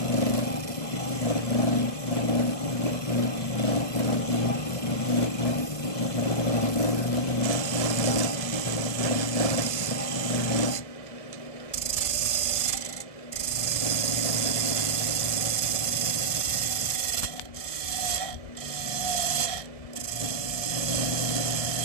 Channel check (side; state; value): right; late; 1.7 ms